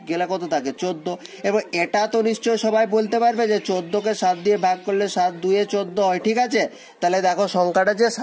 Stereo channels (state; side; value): identical; both; correlation 1.00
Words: গেলে কত থাকে? 14। এবার এটা তো নিশ্চয় সবাই বলতে পারবে যে 14কে 7 দিয়ে ভাগ করলে 7 2 14 হয়, ঠিক আছে? তাহলে দেখো সংখ্যাটা যে